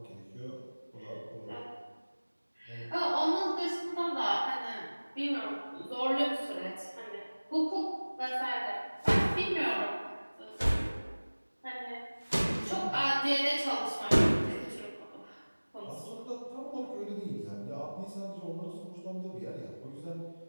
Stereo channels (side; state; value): both; inverted; correlation -1.00